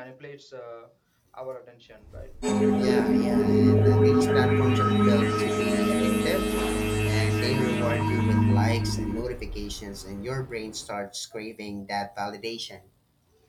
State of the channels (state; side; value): identical; both; correlation 1.00